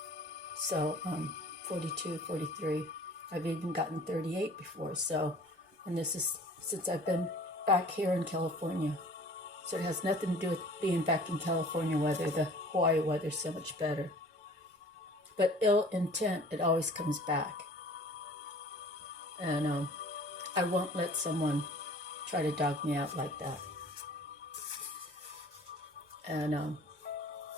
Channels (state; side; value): normal; both; correlation 0.48